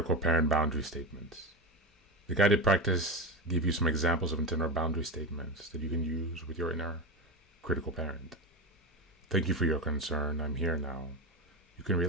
Parent Boundary Statements. The guided practice gives you some examples of internal boundary statements that you can use with your inner critical parent. Thank you for your concern. I'm here now. You can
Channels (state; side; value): normal; both; correlation 0.18